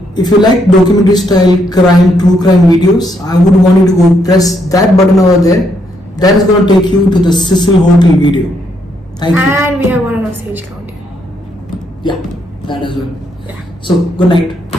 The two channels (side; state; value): both; normal; correlation 0.75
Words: If you like documentary style true crime videos, I would want you to go press that button over there. That is going to take you to the Cecil Hotel video. Thank you. And we have one on our stage count. Yeah, that as well. Yeah. So, good